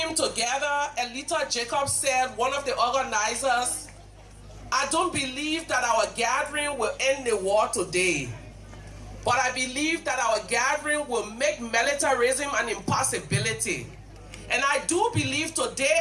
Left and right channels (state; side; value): identical; both; correlation 1.00